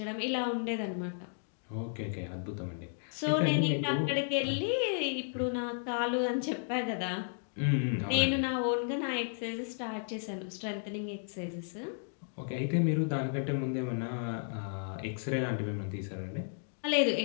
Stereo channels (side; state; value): right; silent; digital silence